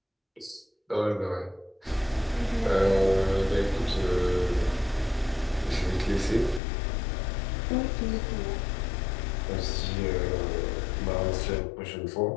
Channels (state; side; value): drops out; right; at 6.6 s